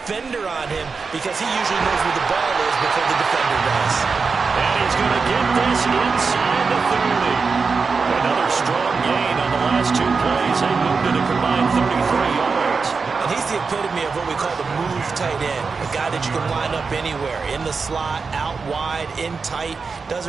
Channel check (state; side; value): quieter; left; 4.8 dB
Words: on him, because he usually knows where the ball is before the defender does. And he's going to get this inside the 30. Another strong gain on the last 2 plays. They moved it a combined 33 yards. And he's the epitome of what we call the move tight end, a guy that you can line up anywhere, in the slot, out wide, in tight,